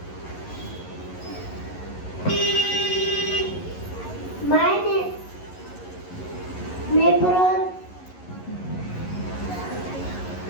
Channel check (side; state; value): right; late; 11 ms